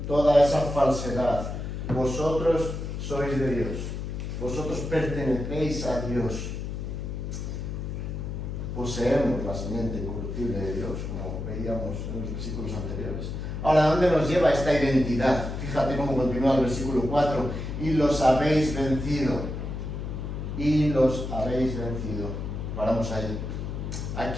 toda esa falsedad. Vosotros sois de Dios. Vosotros pertenecéis a Dios. Poseemos la simiente incorruptible de Dios, como veíamos en los versículos anteriores. Ahora, ¿dónde nos lleva esta identidad? Fíjate cómo continúa el versículo 4. Y los habéis vencido. Y los habéis vencido. Paramos ahí. ¿A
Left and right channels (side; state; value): left; noise; hum, 5 dB below the sound